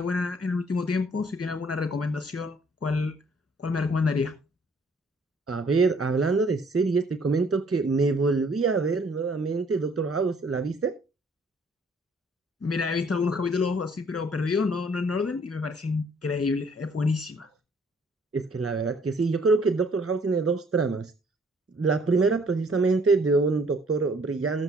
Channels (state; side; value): normal; both; correlation 0.61